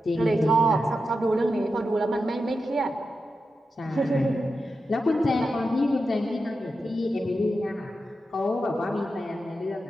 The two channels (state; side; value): normal; both; correlation 0.89